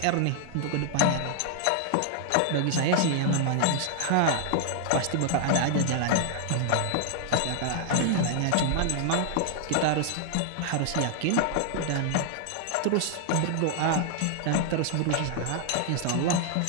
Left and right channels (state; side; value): different; both; correlation 0.00